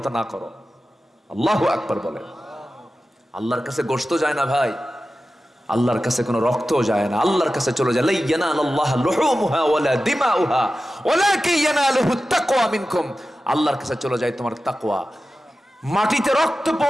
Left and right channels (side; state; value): both; normal; correlation 0.94